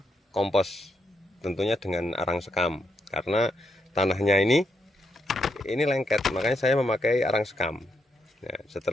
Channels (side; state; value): both; normal; correlation 0.80